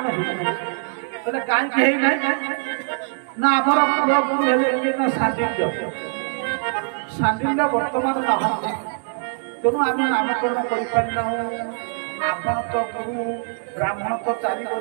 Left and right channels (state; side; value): silent; left; digital silence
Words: ହେଇନାହିଁ ତାହେଲେ କାହିଁକି ହେଇନାହିଁ ନା ଆମର ପୁଅ ଗୁରୁ ହେଲେ କି ନା ସାଣ୍ଡିଲ୍ୟ ବର୍ତ୍ତମାନ ନାହାନ୍ତି ତେଣୁ ଆମେ ନାମକରଣ କରିପାରିନାହୁଁ ଆପଣ ତ ଗୁରୁ ବ୍ରାହ୍ମଣ ତ 4